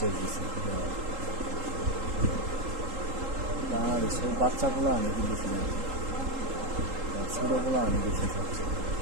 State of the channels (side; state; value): left; late; 3.8 ms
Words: দিচ্ছে। বাংলাদেশের বাচ্চাগুলো অনেক বেশি নেই, ছোটোগুলো অনেক বেশি থাকছে।